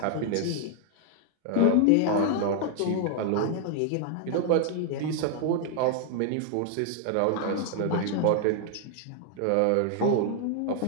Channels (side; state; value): both; different; correlation 0.00